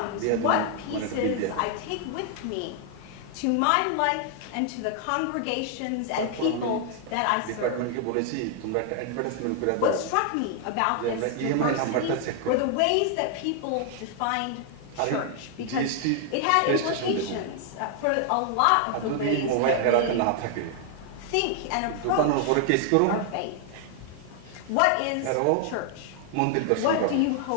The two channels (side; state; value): both; different; correlation 0.00